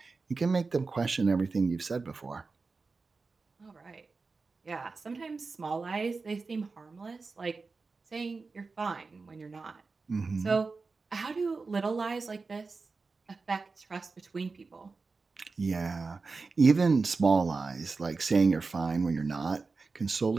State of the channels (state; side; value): quieter; left; 4.2 dB